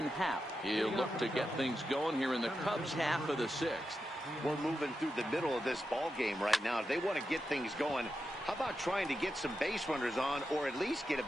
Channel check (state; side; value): normal; both; correlation 0.88